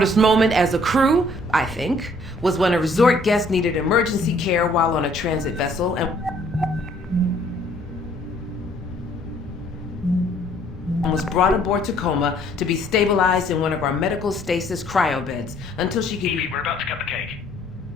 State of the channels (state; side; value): normal; both; correlation 0.61